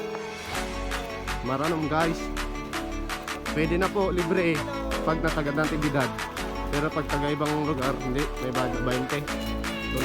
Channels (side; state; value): both; identical; correlation 1.00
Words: Maranom guys. Pwede na po, libre pag natagad ng tibidad. Pero pag taga ibang lugar, hindi, may budget 20.